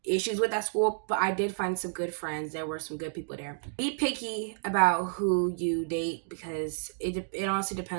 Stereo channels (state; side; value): silent; left; digital silence